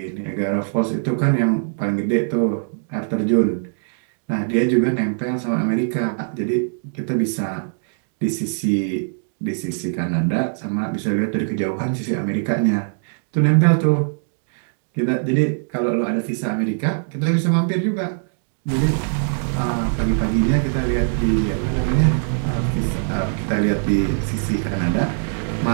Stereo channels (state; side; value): silent; left; digital silence